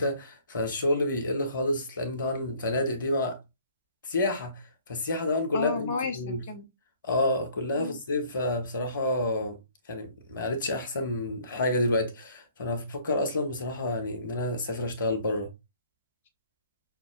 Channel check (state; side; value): inverted; both; correlation -0.57